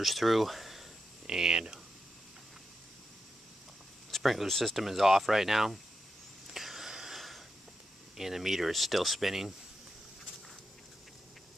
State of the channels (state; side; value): normal; both; correlation 0.87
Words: through, and the sprinkler system is off right now, and the meter is still spinning.